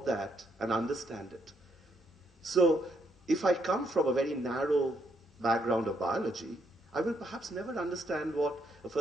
that and understand it? So if I come from a very narrow background of biology, I will perhaps never understand what a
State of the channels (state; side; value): normal; both; correlation 0.74